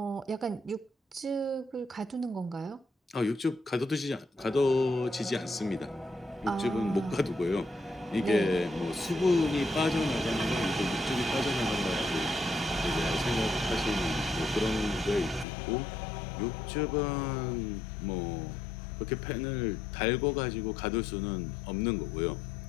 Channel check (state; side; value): drops out; right; at 15.5 s